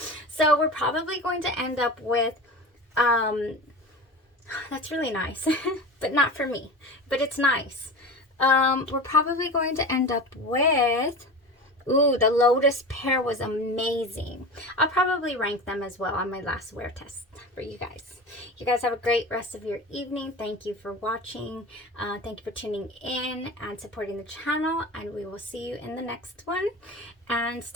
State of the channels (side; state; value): both; normal; correlation 0.30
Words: So we're probably going to end up with, that's really nice, but not for me, but it's nice. We're probably going to end up with, ooh, the Lotus Pear was amazing. I'll probably rank them as well on my last wear test for you guys. You guys have a great rest of your evening. Thank you for watching. Thank you for tuning in and supporting the channel, and we will see you in the next one. And